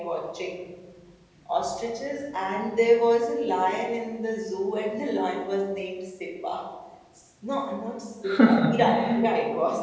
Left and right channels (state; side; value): identical; both; correlation 1.00